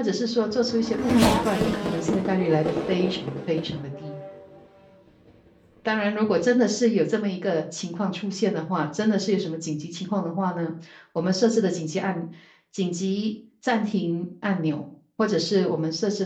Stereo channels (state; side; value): identical; both; correlation 1.00